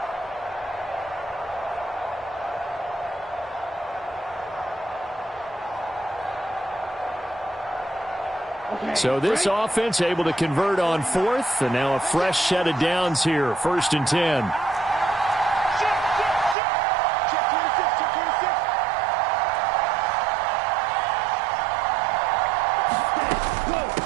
So this offense able to convert on fourth, and now a fresh set of downs here, 1st and 10.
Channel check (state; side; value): drops out; left; at 16.6 s